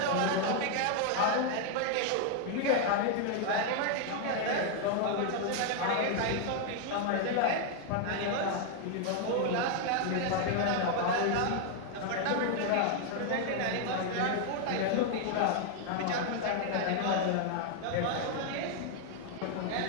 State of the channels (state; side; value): different; both; correlation 0.00